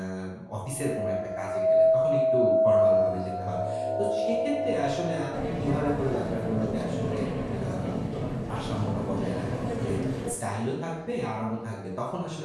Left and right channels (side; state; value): both; identical; correlation 1.00